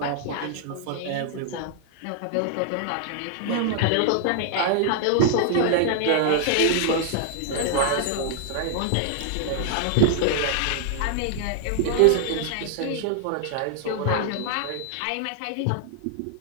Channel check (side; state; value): both; different; correlation 0.00